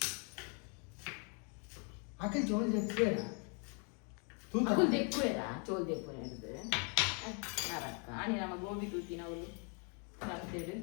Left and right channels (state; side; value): quieter; right; 37.7 dB